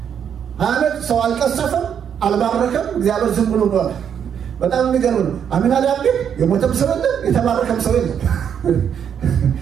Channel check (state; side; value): quieter; left; 8.2 dB